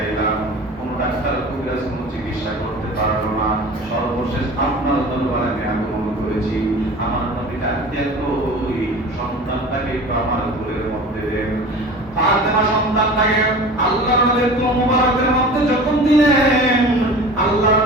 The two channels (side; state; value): both; normal; correlation 0.38